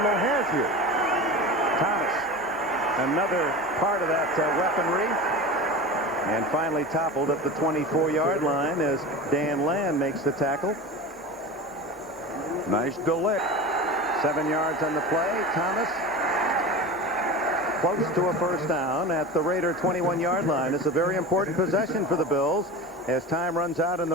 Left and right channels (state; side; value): normal; both; correlation 0.30